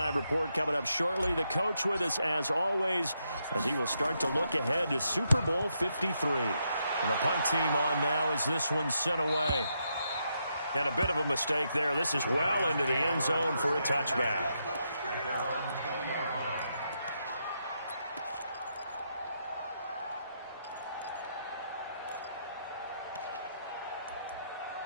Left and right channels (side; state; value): both; inverted; correlation -0.80